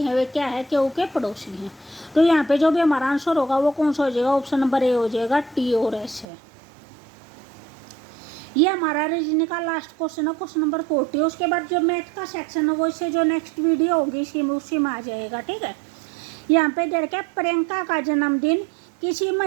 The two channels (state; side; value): drops out; left; at 6.2 s